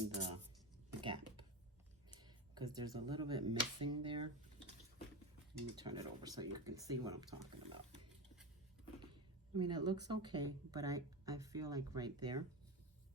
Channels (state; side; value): normal; both; correlation 0.21